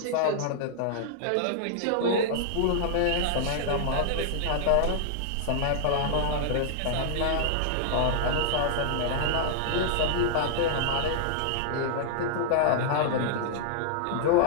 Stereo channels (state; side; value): different; both; correlation -0.01